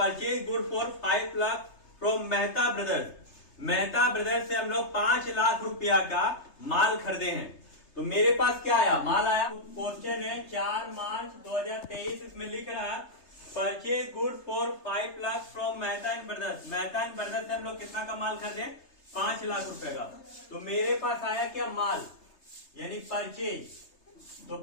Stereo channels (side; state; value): right; late; 3.3 ms